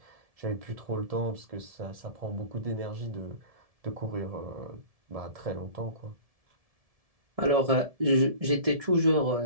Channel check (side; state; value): left; late; 1.7 ms